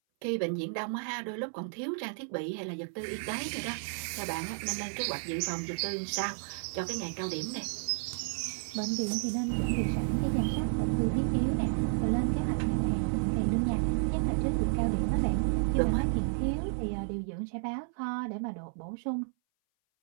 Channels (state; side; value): silent; left; 57 dB below the other